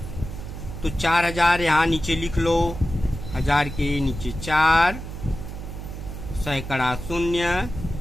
तो 4000 यहाँ नीचे लिख लो, 1000 के नीचे 4, सैकड़ा 0,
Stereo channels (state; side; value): noise; right; hum, 9 dB below the sound